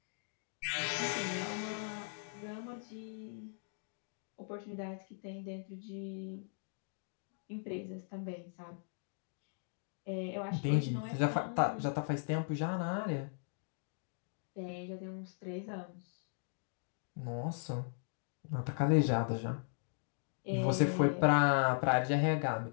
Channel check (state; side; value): silent; right; digital silence